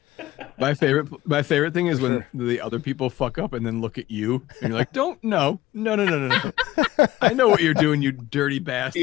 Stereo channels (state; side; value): quieter; right; 16.2 dB